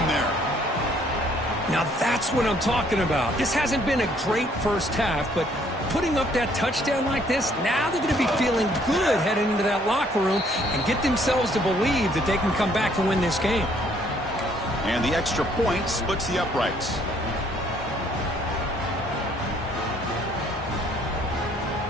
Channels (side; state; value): both; normal; correlation 0.64